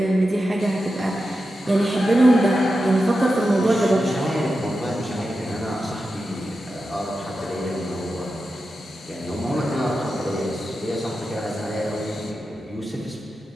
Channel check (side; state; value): both; normal; correlation 0.90